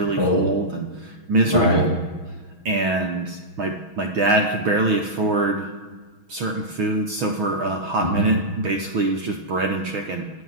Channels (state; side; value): late; left; 6.2 ms